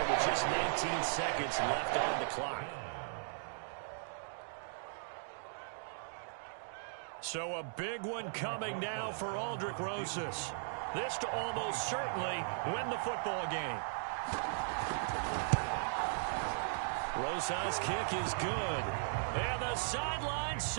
with just 19 seconds left on the clock. So a big one coming now for Aldrick Rosas. This to almost certainly win the football game. Rosas' kick is good. And the sideline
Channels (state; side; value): silent; left; digital silence